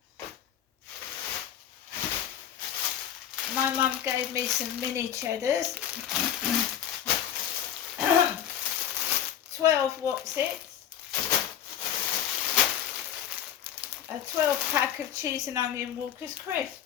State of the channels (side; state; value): right; quieter; 9.9 dB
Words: My mum gave me some mini cheddars. 12 Wotsits. A 12 pack of cheese and onion Walker's crisp.